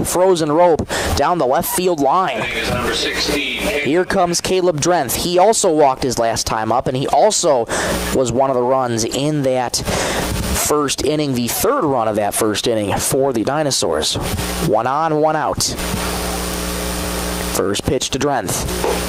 rope down the left field line. Number 16. Here comes Caleb Drenth. He also walked his last time up, and he also was one of the runs in that first inning, the third run of that first inning for the Dinosaurs. 1 on, 1 out. First pitch to Drenth.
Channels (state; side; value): identical; both; correlation 1.00